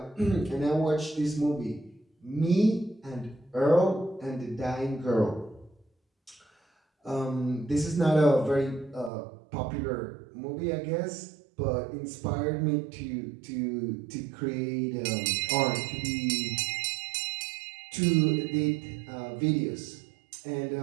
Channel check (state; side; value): drops out; left; at 9.1 s